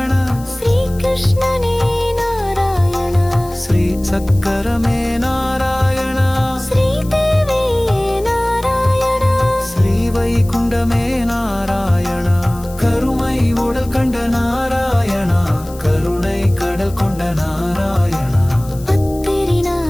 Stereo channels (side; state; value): left; noise; hiss, 20 dB below the sound